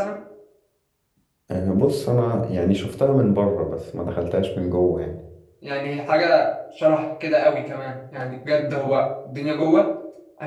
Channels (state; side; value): identical; both; correlation 1.00